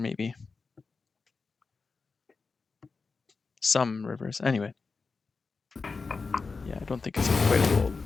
Some rivers. Anyway. Yeah, I don't think it's quite a fold,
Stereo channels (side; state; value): right; quieter; 4.4 dB